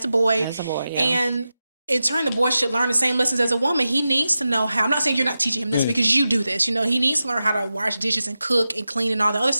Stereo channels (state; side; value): inverted; both; correlation -0.92